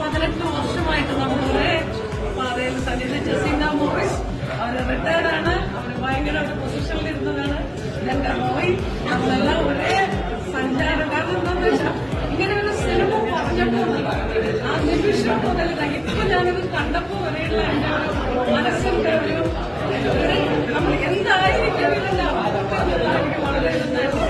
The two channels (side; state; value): both; identical; correlation 1.00